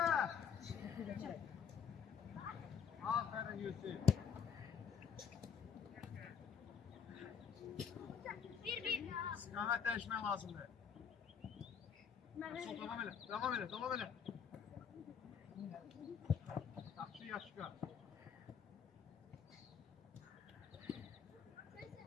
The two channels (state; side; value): quieter; right; 7.2 dB